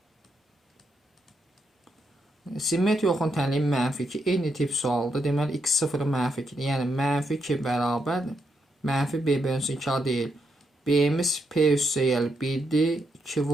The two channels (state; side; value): normal; both; correlation 0.80